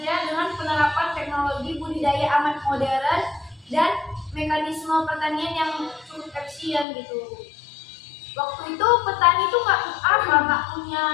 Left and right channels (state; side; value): drops out; right; at 6.9 s